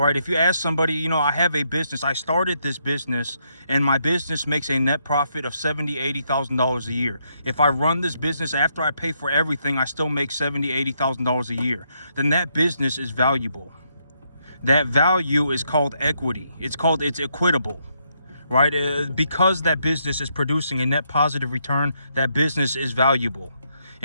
right, if you ask somebody, I have a business, I started this business, and my business makes a net profit of $70,000-$80,000 a year. If I run this business after I pay for everything, I still make $70,000-$80,000 a year. Then that business is valuable. That value is called equity. It's equitable, right? Because that business is producing a net positive return, that business is valuable.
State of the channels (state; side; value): inverted; both; correlation -0.76